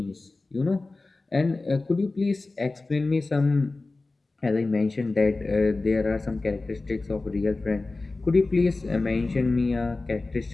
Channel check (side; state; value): right; quieter; 3.4 dB